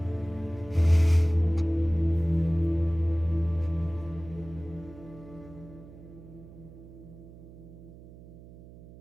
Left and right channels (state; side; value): noise; right; hum, 19 dB below the sound